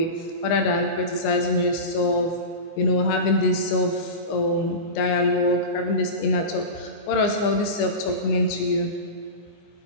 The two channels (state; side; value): late; right; 24 ms